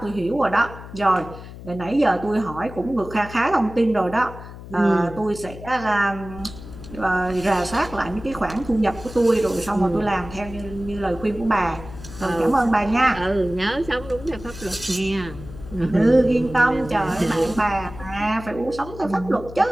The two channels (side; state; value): left; noise; hum, 14 dB below the sound